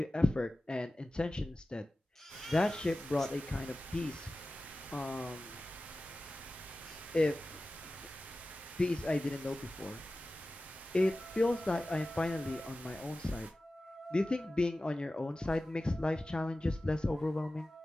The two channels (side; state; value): both; normal; correlation 0.95